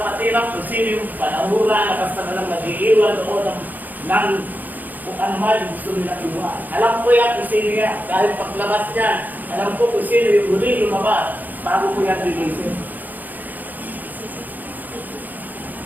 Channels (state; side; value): late; left; 0.083 ms